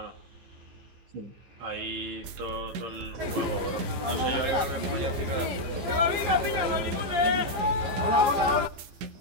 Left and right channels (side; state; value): left; late; 15 ms